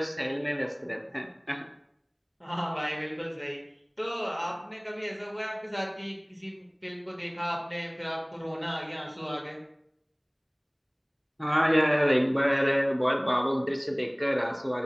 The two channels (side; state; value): both; identical; correlation 1.00